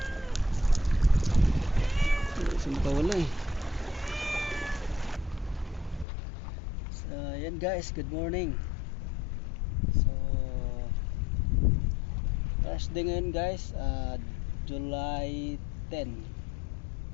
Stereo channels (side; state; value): right; drops out; at 6.1 s